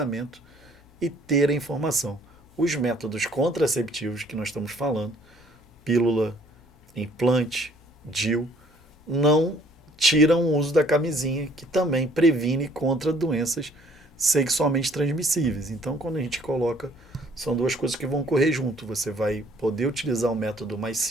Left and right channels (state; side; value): noise; left; hum, 27 dB below the sound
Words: e ter a informação. Os métodos contraceptivos que nós estamos falando, pílula, implante, DIU, não tiram o uso da camisinha, que também previne contra doenças sexualmente transmissíveis. Então, quando a gente coloca, são duas coisas que vão correr junto. Você vai poder utilizar um método mais